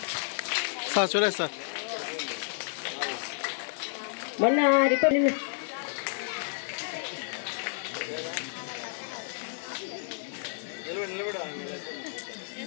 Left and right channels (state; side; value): silent; right; digital silence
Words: సార్ చూడండి సార్, మొన్న report